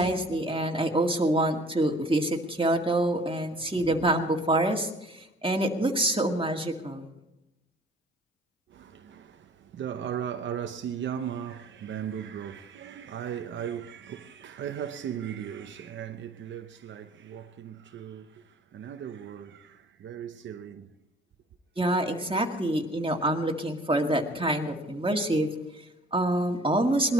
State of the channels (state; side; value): normal; both; correlation 0.51